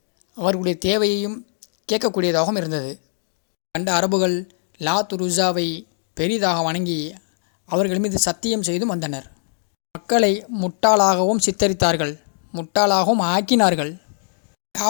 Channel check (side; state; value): right; silent; 60 dB below the other